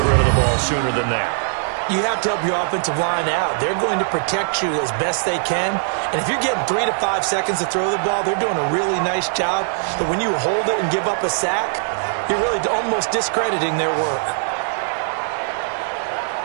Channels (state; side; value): silent; left; 61 dB below the other